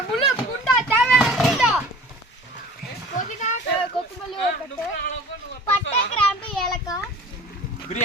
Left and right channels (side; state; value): both; normal; correlation 0.43